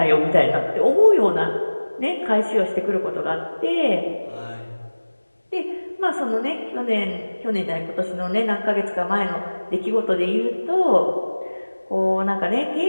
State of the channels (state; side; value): inverted; both; correlation -1.00